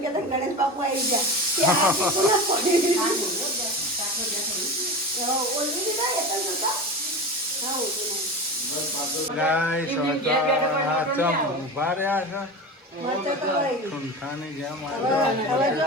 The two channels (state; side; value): normal; both; correlation 0.27